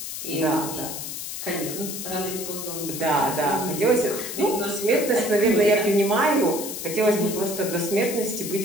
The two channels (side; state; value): left; noise; hiss, 7 dB below the sound